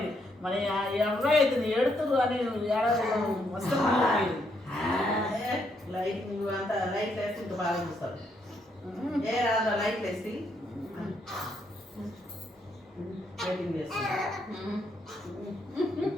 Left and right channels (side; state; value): both; normal; correlation 0.75